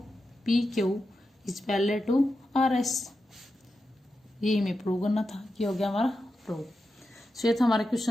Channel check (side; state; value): both; normal; correlation 0.89